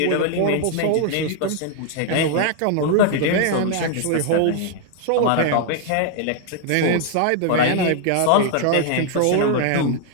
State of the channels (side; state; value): both; different; correlation 0.00